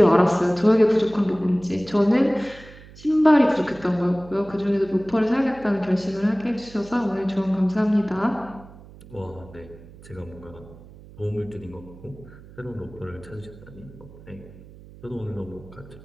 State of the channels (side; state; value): right; noise; hum, 20 dB below the sound